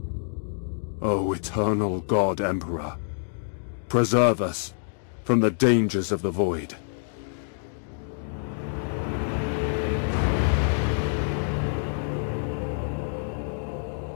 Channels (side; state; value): right; silent; 60 dB below the other